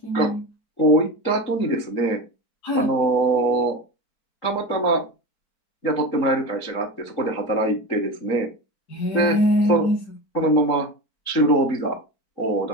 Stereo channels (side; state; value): right; late; 4.5 ms